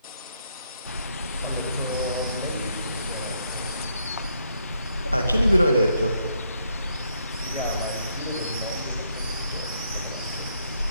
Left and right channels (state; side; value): inverted; both; correlation -0.75